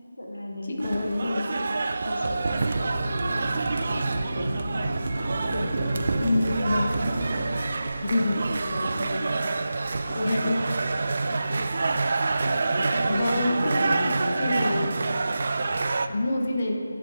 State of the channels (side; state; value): both; inverted; correlation -0.93